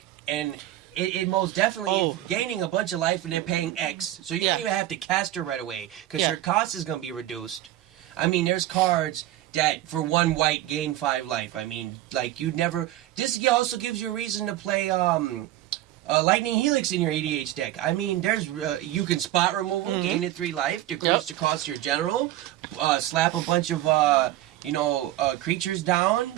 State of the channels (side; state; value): left; quieter; 14.3 dB